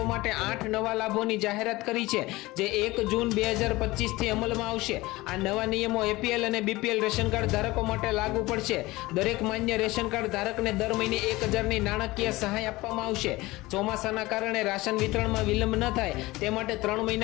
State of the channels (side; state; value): right; quieter; 20.1 dB